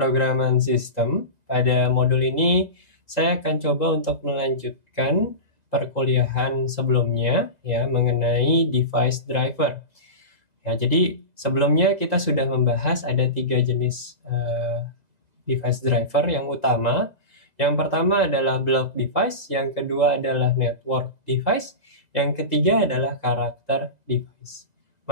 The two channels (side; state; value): left; late; 2.0 ms